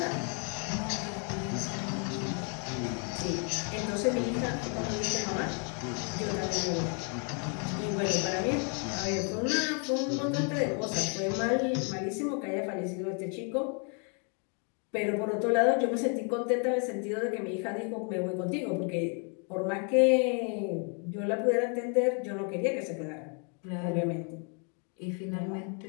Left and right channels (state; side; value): quieter; right; 39.5 dB